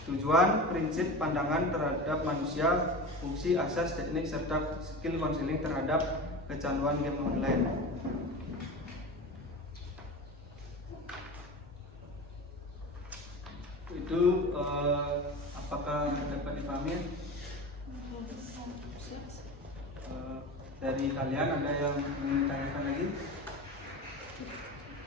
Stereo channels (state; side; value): normal; both; correlation 0.30